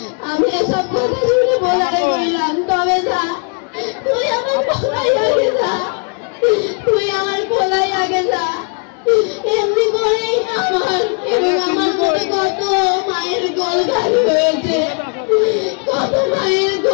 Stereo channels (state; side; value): quieter; right; 39.3 dB